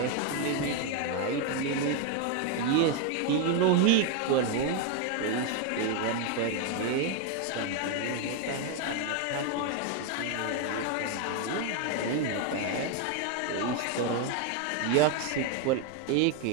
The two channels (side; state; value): both; different; correlation 0.01